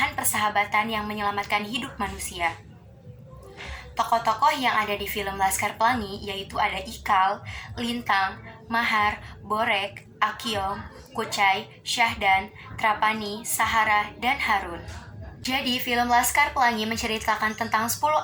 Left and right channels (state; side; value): identical; both; correlation 1.00